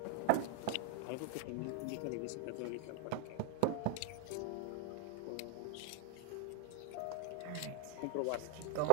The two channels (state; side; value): different; both; correlation 0.00